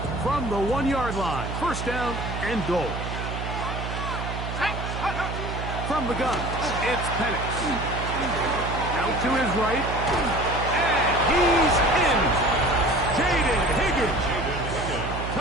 From the 1-yard line, 1st down and goal. From the gun, it's Penix. Out to his right, and he's in. Jaden Higgins.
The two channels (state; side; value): noise; right; hum, 5 dB below the sound